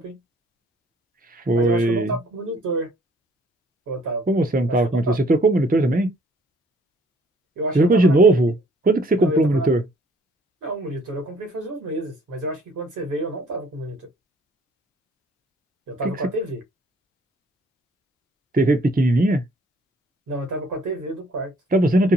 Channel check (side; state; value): both; normal; correlation 0.60